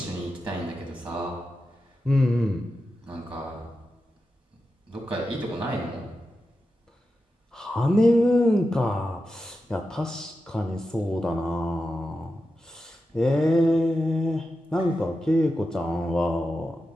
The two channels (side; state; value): both; normal; correlation 0.90